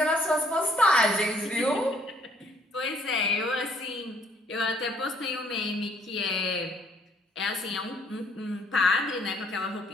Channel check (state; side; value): normal; both; correlation 0.63